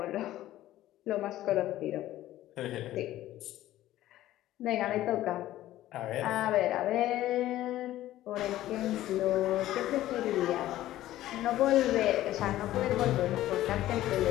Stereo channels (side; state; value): right; quieter; 14.4 dB